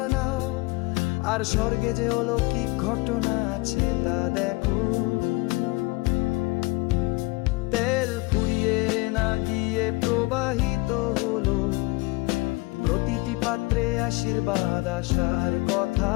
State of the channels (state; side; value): quieter; right; 23.8 dB